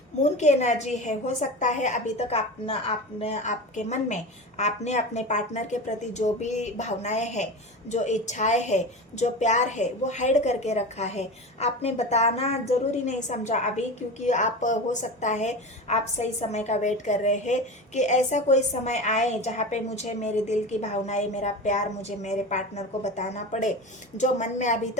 मून की एनर्जी है। हो सकता है अभी तक आपने आपके मन में आपने अपने पार्टनर के प्रति जो भी भावनाएं हैं, जो इच्छाएं हैं, जो प्यार है, वो हाइड करके रखा है। आपने बताना ज़रूरी नहीं समझा अभी, क्योंकि आप हो सकता है आप सही समय का वेट कर रहे हैं कि ऐसा कोई समय आए जहाँ पे मुझे मेरे दिल की भावनाएं, मेरा प्यार मुझे मेरे पार्टनर को बताना पड़े, जो मन में अभी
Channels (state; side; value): normal; both; correlation 0.27